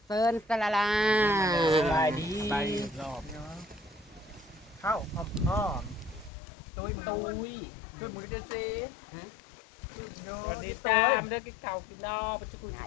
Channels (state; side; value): drops out; right; at 6.3 s